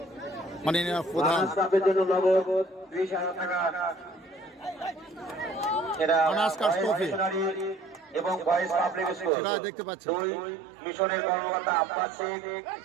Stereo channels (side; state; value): left; drops out; at 9.3 s